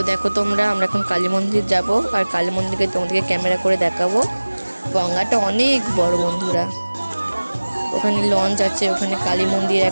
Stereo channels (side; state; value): both; inverted; correlation -1.00